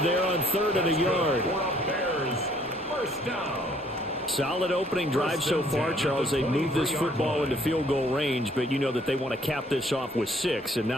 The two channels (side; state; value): both; normal; correlation 0.62